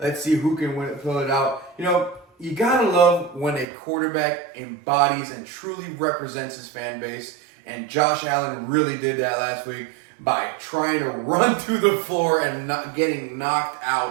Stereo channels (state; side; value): drops out; left; at 3.7 s